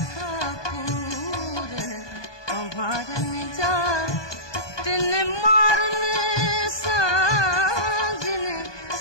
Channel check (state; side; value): late; right; 1.2 ms